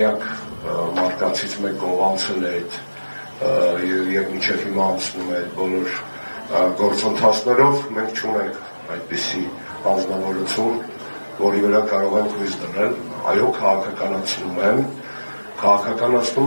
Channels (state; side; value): inverted; both; correlation -1.00